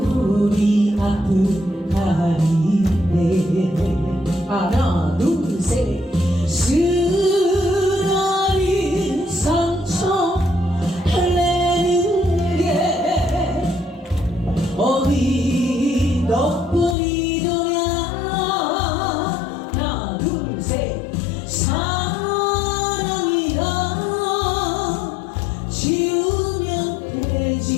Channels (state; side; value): drops out; right; at 16.9 s